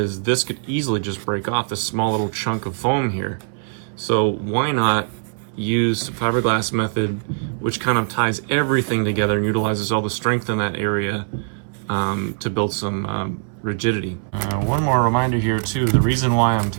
this could easily just break off this small little chunk of foam here. So why not use the fiberglass method, which kind of ties everything together and utilizes all the strength in that area to build some rigidity. One more reminder here too, the reason why I'm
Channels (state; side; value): silent; left; 64 dB below the other